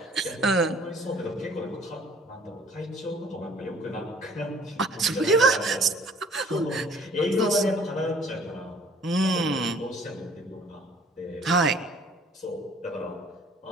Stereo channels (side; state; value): both; normal; correlation 0.54